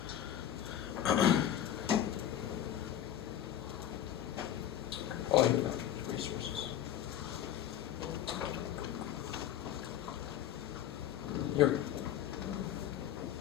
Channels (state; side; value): quieter; right; 11.0 dB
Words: Oh, here we go. Resources. Here we go.